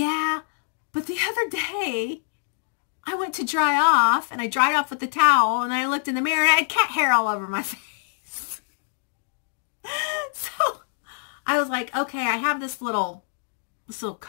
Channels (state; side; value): silent; right; digital silence